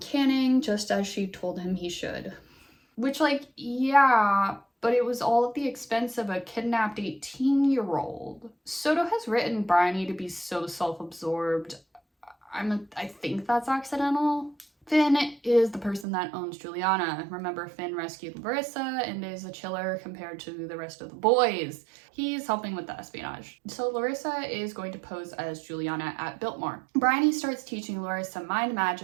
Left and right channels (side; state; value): left; drops out; at 16.1 s